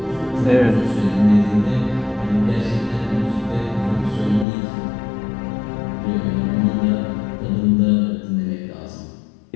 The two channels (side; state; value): right; drops out; at 4.5 s